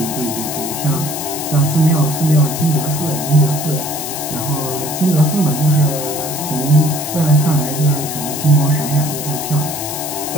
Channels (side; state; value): left; noise; hiss, 6 dB below the sound